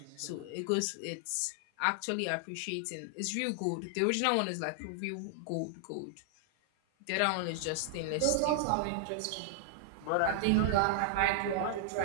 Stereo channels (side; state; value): both; different; correlation -0.01